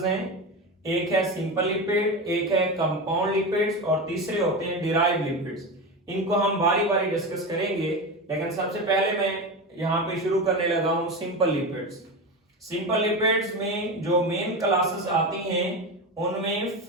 हैं। एक है सिंपल लिपिड, एक है कंपाउंड लिपिड्स, और तीसरे होते हैं डिराइव्ड लिपिड्स। इनको हम बारी बारी डिस्कस करेंगे, लेकिन सबसे पहले मैं यहां पे शुरू करने लगा हूं सिंपल लिपिड्स। सिंपल लिपिड्स में जो मेन क्लासेस आती हैं उनमें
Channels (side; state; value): both; normal; correlation 0.21